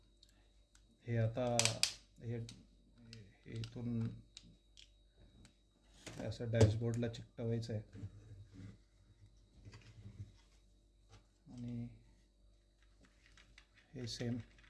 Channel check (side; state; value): both; identical; correlation 1.00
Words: हे आता हे हे इथून असं डॅशबोर्डला चिकटवायचं आहे आणि हे सेम